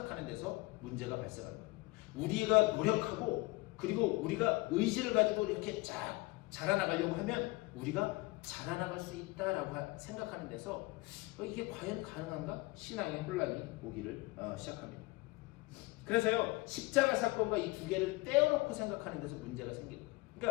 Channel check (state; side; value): quieter; right; 22.5 dB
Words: 데서 문제가 발생하는 거예요. 우리가 노력하고 그리고 우리가 의지를 가지고 이렇게 쫙 자라나가려고 하면 우리가 자라나갈 수 있다라고 생각하는 데서 이게 과연 가능한가? 신앙의 혼란이 오기를 시작합니다. 그래서요, 십자가 사건과 이 두 개를 떼어놓고 생각하는 데서 문제가 생깁니다.